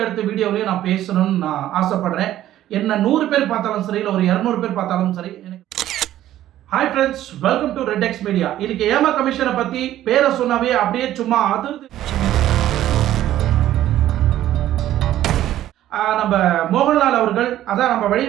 வீடியோவிலையும் நான் பேசணும்னு நான் ஆசைப்படுறேன். என்ன 100 பேர் பார்த்தாலும் சரி, இல்லை ஒரு 200 பேர் பார்த்தாலும் சரி. Hi friends, welcome to red X media. இன்னைக்கு ஏமா கமிஷனை பற்றி பேரை சொன்னாவே அப்படியே சும்மா அதிர்ந்து நம்ம மோகன்லால் அவர்கள், அதான் நம்ம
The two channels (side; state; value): left; quieter; 13.0 dB